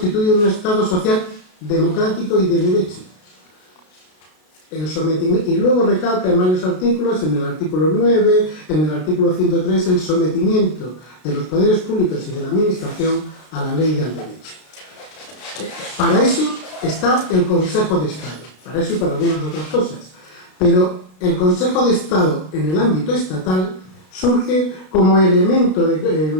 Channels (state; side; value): late; right; 33 ms